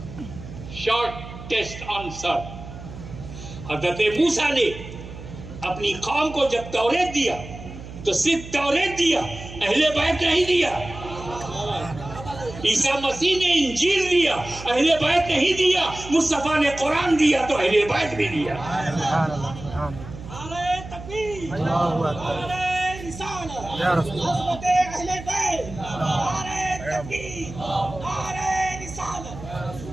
Short test answer. हज़रत मूसा ने अपनी कौम को जब तौरेत दिया तो सिर्फ तौरेत दिया, अहले बैत नहीं दिया। ईसा मसीह ने इंजील दिया, अहले बैत नहीं दिया। मुस्तफा ने कुरान दिया तो अहले बैत भी दिया।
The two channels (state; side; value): noise; right; hum, 13 dB below the sound